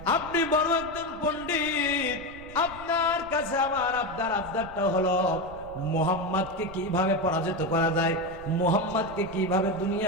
আপনি বড় একজন পণ্ডিত, আপনার কাছে আমার আবদারটা হলো মুহাম্মদকে কিভাবে পরাজিত করা যায়, মুহাম্মদকে কিভাবে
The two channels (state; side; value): noise; right; rumble, 17 dB below the sound